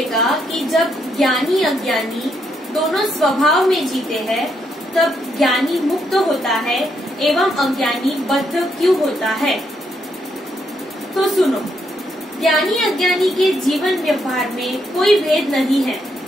कि जब ज्ञानी अज्ञानी दोनों स्वभाव में जीते हैं, तब ज्ञानी मुक्त होता है एवं अज्ञानी बद्ध क्यों होता है? तो सुनो, ज्ञानी अज्ञानी के जीवन व्यवहार में कोई भेद नहीं है।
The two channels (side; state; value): both; normal; correlation 0.77